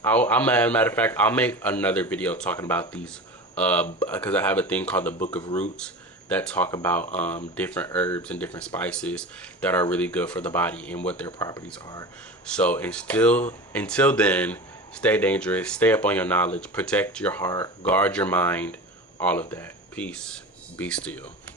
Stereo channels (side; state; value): both; normal; correlation 0.32